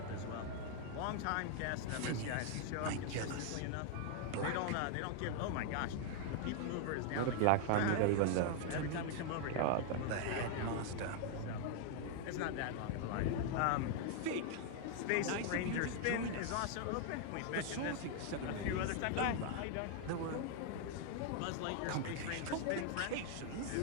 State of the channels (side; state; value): both; different; correlation 0.00